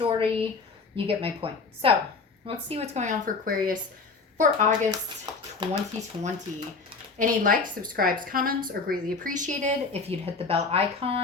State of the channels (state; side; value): quieter; right; 4.4 dB